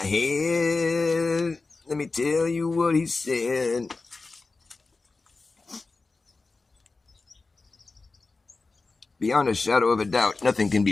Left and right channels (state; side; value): quieter; right; 3.8 dB